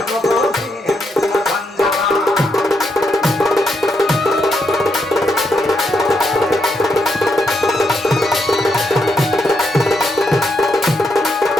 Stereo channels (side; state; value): both; normal; correlation 0.80